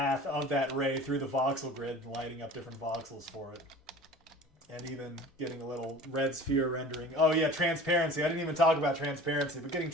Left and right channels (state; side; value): normal; both; correlation 0.42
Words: of that ray through the voxel grid and lighting up different voxels for it. And even getting a little red sphere rendering. Oh yeah, transparency. I didn't even talk about transparency, but getting